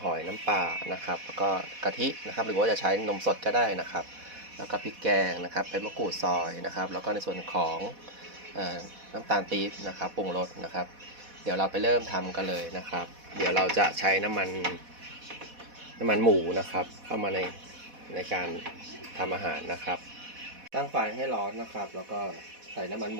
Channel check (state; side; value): late; left; 4.1 ms